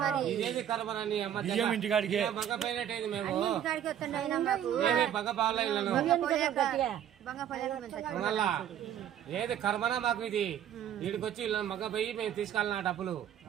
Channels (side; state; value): left; quieter; 10.2 dB